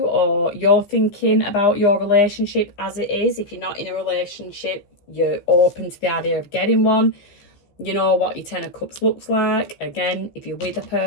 or you're thinking about your relationship as it is. If you're not in a relationship, you're open to the idea of getting one. You know what your Ten of Cups looks like. Again, if you're with a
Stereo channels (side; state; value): right; late; 15 ms